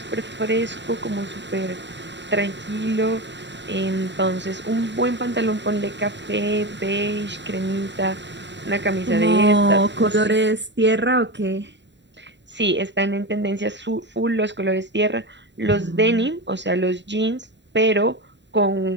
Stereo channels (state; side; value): late; left; 0.52 ms